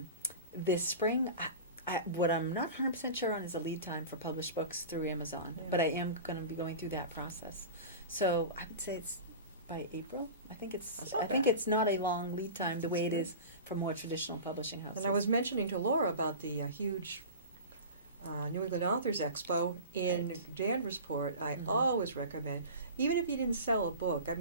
This spring, what I'm not 100% sure on is a lead time for published books through Amazon, Yeah. but I am going to be going through that process. So I would say it's by April. I think That's not it's bad. not a long lead time the That's way it good. is for more traditional publishing houses. And I was mentioning to Laura about the huge New England Authors Expo in Right. Danversport. I Mhm. always recommend, even if you didn't sell a book, I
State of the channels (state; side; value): inverted; both; correlation -0.33